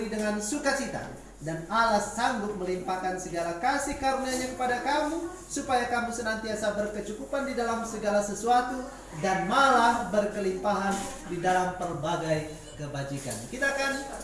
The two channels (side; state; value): both; identical; correlation 1.00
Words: dengan sukacita. Dan Allah sanggup melimpahkan segala kasih karunia-Nya kepada kamu, supaya kamu senantiasa berkecukupan di dalam segala sesuatu, dan malah berkelimpahan di dalam berbagai kebajikan. Kita akan